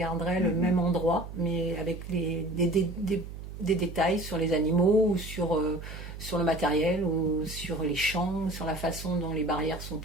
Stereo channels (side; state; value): right; noise; hum, 11 dB below the sound